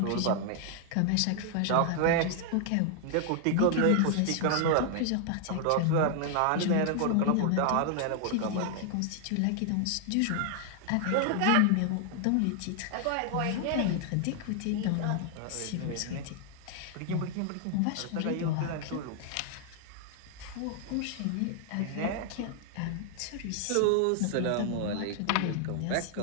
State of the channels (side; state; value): both; different; correlation 0.00